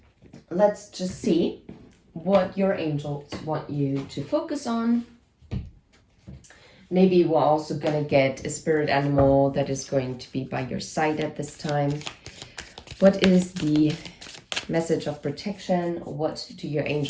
Let's just see what your angels want you to focus on. Maybe we're also going to get a spirit animal that is going to be by your side at this time. What is the message of protection? What do your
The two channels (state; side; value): identical; both; correlation 1.00